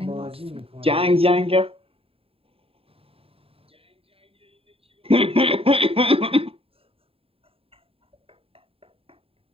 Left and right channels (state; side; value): late; left; 0.27 ms